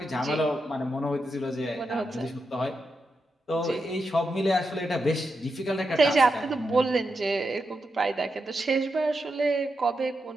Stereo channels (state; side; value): normal; both; correlation 0.86